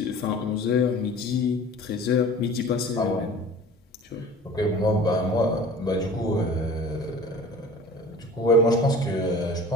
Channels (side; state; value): both; normal; correlation 0.43